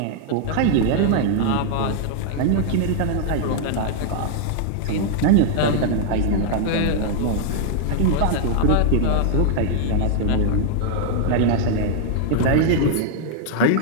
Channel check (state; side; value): different; both; correlation -0.01